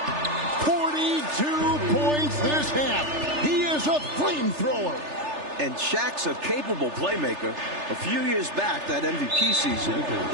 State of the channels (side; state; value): left; late; 3.4 ms